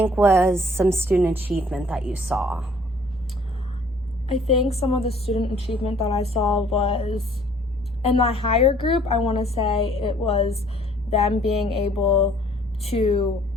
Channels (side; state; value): both; normal; correlation 0.57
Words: was some student achievement that you saw? I think some of the student achievement that I saw was in my higher group. I want to say it was them being able to